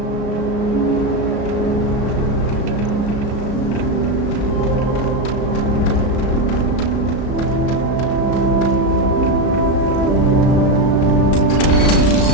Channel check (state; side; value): late; right; 35 ms